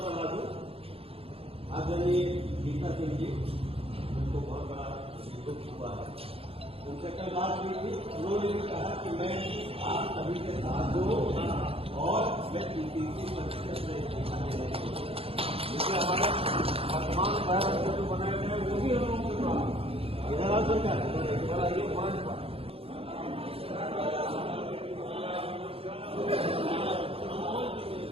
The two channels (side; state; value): left; late; 0.28 ms